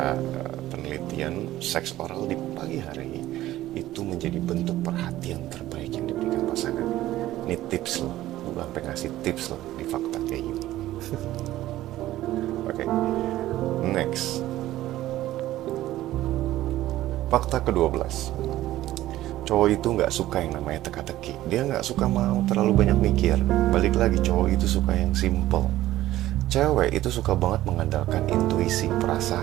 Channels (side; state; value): left; quieter; 14.9 dB